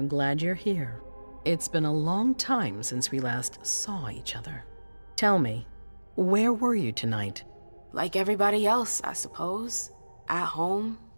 glad you're here. It's been a long time since we last saw each other. Tell me, where were you tonight? Like everybody else, I suppose. At home,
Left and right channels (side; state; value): both; inverted; correlation -1.00